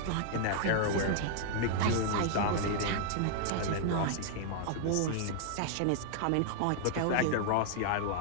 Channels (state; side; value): different; both; correlation -0.01